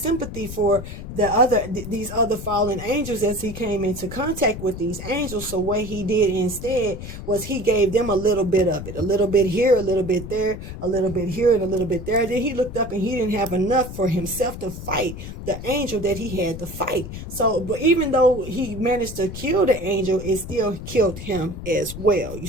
for these other fallen angels as he came into contact with these angels. So what he did instead was he gave them a little bit of it, a little bit here, a little bit there, a little bit here, and a little bit there. Then he looked up and he didn't have enough for himself to fight the angel that he had to fight. So, but even though he managed to kill the angel, it still killed him as well. You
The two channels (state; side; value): noise; left; rumble, 10 dB below the sound